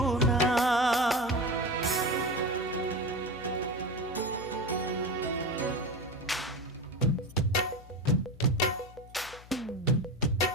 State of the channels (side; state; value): left; noise; hum, 20 dB below the sound